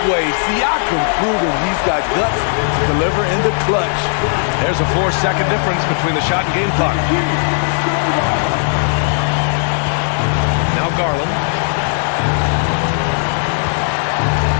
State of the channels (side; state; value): right; silent; 59 dB below the other